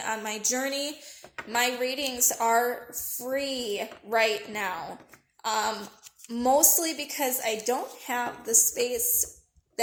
on my journey, my readings are free right now. Mostly because I don't have the space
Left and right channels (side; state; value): both; identical; correlation 1.00